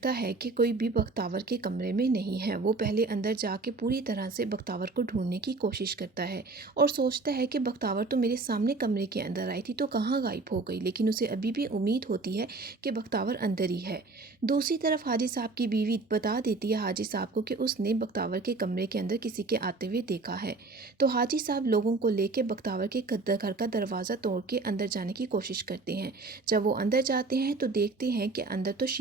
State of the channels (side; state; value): left; quieter; 3.7 dB